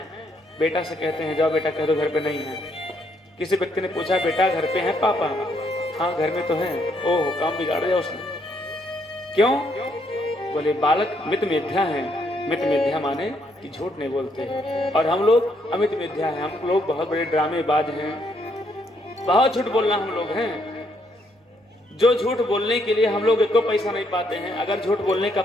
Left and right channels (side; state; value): both; normal; correlation 0.73